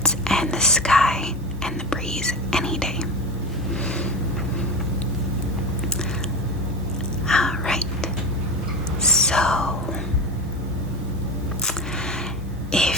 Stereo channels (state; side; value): normal; both; correlation 0.25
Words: and the sky and the breeze any day. Alright, so